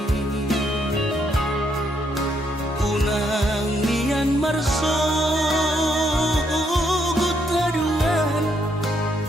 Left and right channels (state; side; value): normal; both; correlation 0.74